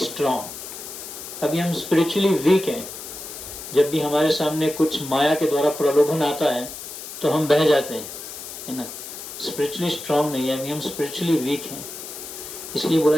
अभी हम स्पिरिचुअली वीक हैं, जब भी हमारे सामने कुछ माया के द्वारा प्रलोभन आता है तो हम बह जाते हैं, है ना। स्पिरिचुअली स्ट्रांग नहीं है, अभी हम स्पिरिचुअली वीक हैं। इसलिए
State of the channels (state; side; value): noise; left; hiss, 11 dB below the sound